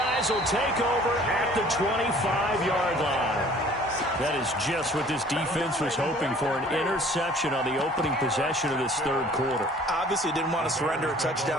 will take over at the 25-yard line. That is just what this defense was hoping for, an interception on the opening possession of this third quarter. Obviously didn't want to surrender a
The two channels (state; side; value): normal; both; correlation 0.52